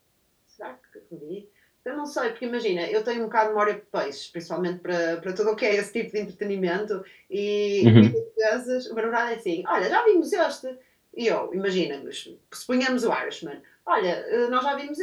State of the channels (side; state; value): both; identical; correlation 1.00